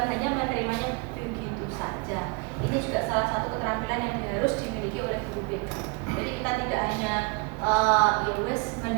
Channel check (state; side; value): quieter; left; 30.5 dB